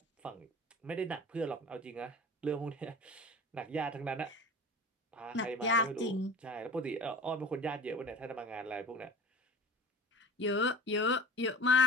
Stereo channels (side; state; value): both; normal; correlation 0.39